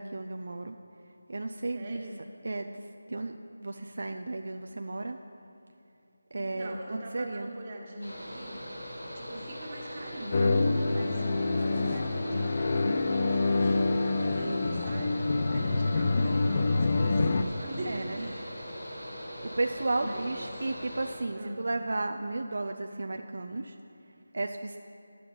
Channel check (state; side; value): inverted; both; correlation -0.94